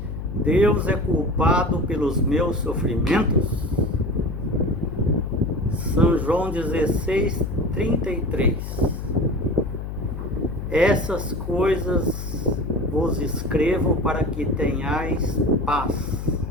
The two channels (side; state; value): left; noise; hum, 6 dB below the sound